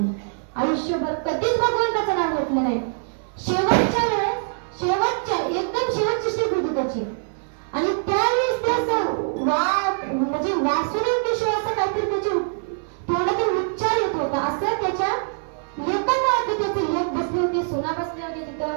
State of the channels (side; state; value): left; silent; 63 dB below the other